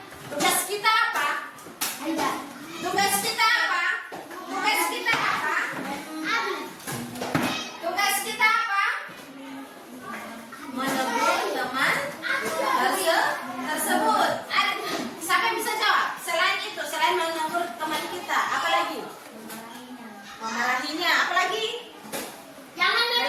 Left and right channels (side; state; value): both; identical; correlation 1.00